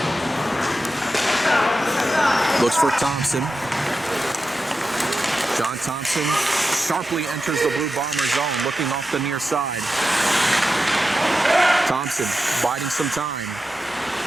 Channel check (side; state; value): both; normal; correlation 0.91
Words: Looks for Thompson. John Thompson sharply enters the Blue Bomber zone, looking off the near side. Thompson biding some time.